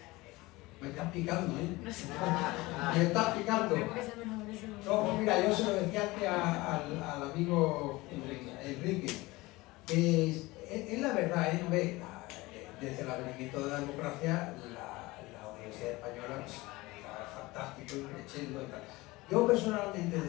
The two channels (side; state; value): right; quieter; 21.1 dB